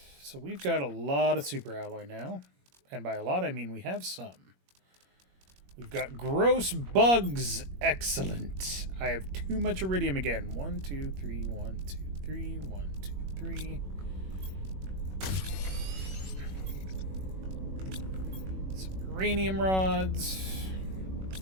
so we've got a lot of super alloy now. And by a lot, I mean we have some. We've got gross bugs. Excellent. I have too much iridium again. 1, 2, 3, 1, 2, 3, 1, 2, 3. Uranium rods,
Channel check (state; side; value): late; left; 21 ms